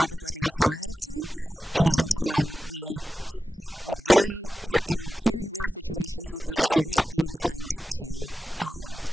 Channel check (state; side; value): normal; both; correlation 0.92